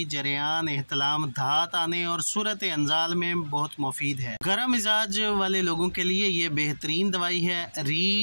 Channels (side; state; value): both; inverted; correlation -1.00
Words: जरियान, एहतलाम, धात आने और सूरत अंजाल में बहुत मुफीद है। गर्म मिजाज वाले लोगों के लिए ये बेहतरीन दवाई है।